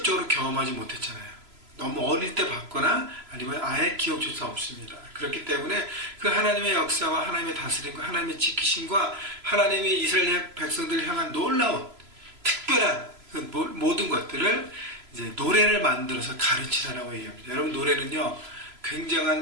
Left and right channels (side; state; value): left; late; 3.0 ms